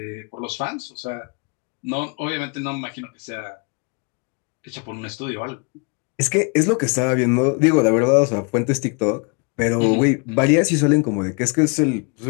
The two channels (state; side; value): quieter; right; 34.3 dB